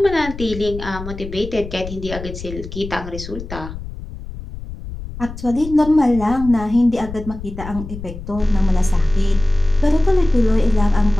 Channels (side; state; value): left; noise; rumble, 11 dB below the sound